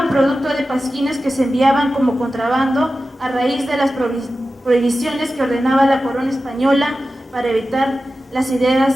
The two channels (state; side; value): normal; both; correlation 0.93